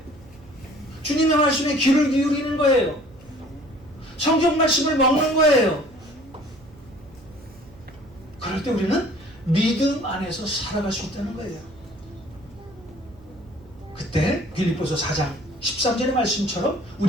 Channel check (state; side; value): noise; right; hum, 23 dB below the sound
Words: 주님의 말씀에 귀를 기울이는 거예요. 성경 말씀을 먹는 거예요. 그때 우리는 믿음 안에서 살아갈 수 있다는 거예요. 그때 빌립보서 4장 13절의 말씀처럼